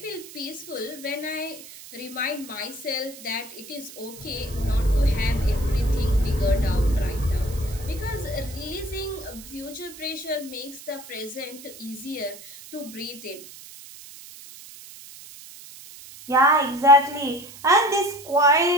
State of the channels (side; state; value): right; noise; hiss, 16 dB below the sound